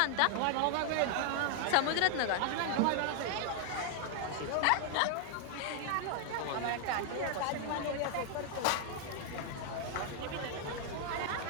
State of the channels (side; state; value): both; different; correlation 0.00